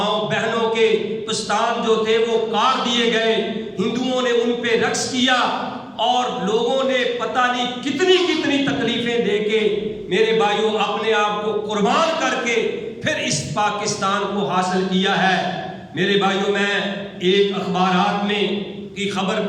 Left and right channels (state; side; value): identical; both; correlation 1.00